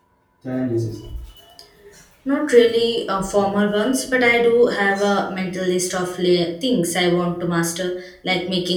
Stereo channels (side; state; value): both; identical; correlation 1.00